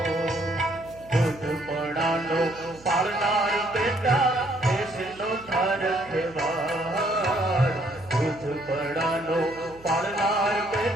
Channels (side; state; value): right; noise; hum, 23 dB below the sound